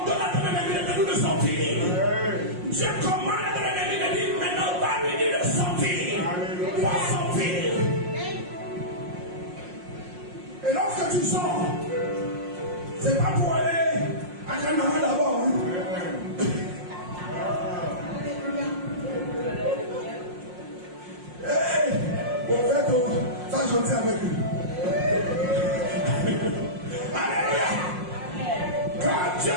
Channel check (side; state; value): left; late; 5.6 ms